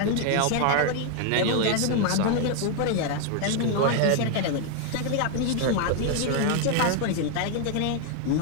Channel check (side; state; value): both; different; correlation 0.00